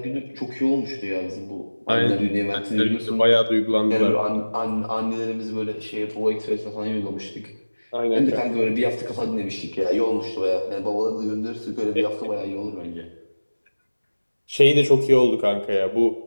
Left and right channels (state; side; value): inverted; both; correlation -1.00